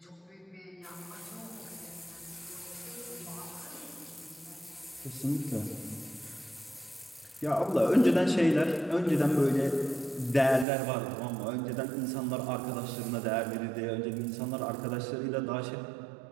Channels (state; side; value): drops out; left; at 10.7 s